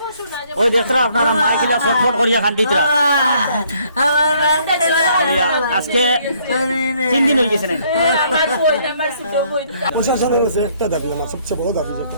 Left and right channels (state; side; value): inverted; both; correlation -0.65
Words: ওই দেখরা আপনারা মাইকিলা ফটফট করিয়া খান দিতরা আজকে 3 দিন হয়ে গেছে না প্রশাসনের কাছে একটা দাবি আমার সবচেয়ে বড় দাবি যেটা